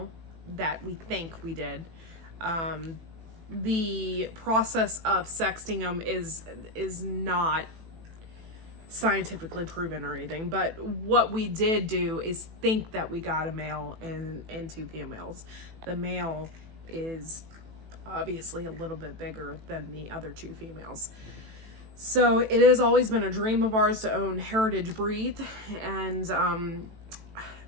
that we think we did. The process of sexting them is not scientifically proven or anything, but what we did do is think that we got a male and 2 females. The male is obviously a little bit bigger than the other 2 females. So it has always been a dream of ours to own heritage breed, and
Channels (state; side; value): late; left; 18 ms